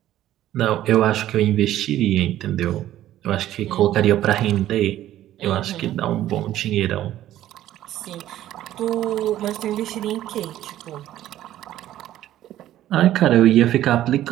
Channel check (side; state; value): left; quieter; 13.1 dB